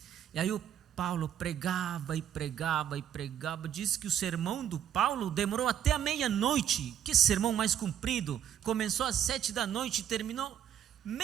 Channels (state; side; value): quieter; left; 9.8 dB